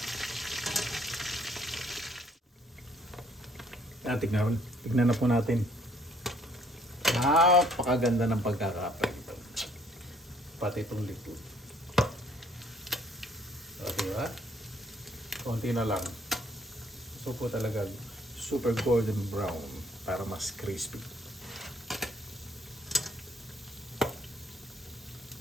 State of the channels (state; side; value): normal; both; correlation 0.63